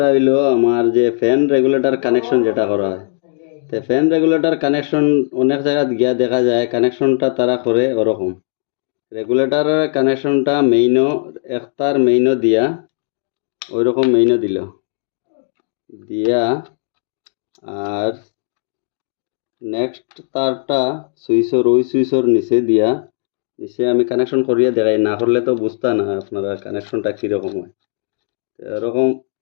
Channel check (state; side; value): silent; right; digital silence